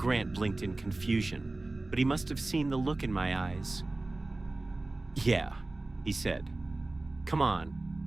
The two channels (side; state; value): left; quieter; 3.0 dB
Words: blinked in confusion, but he must have seen the look in my eyes. "Yeah," he said. "Come on."